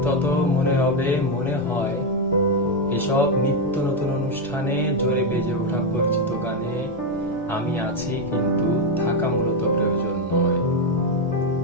তত মনে হবে, মনে হয় এসব নিত্য নতুন অনুষ্ঠানে জোরে বেজে ওঠা পরিচিত গানে আমি আছি, কিন্তু থাকা মূলত প্রয়োজন নয়।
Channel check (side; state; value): both; normal; correlation 0.05